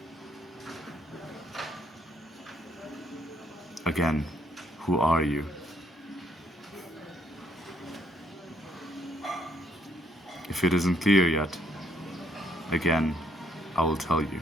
Again, who are you? If it isn't clear yet, again, I will tell you.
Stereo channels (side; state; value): both; normal; correlation 0.69